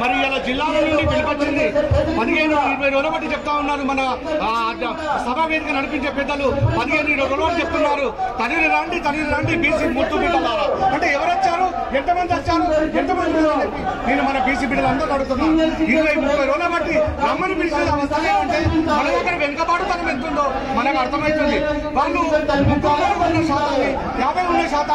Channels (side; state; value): both; identical; correlation 1.00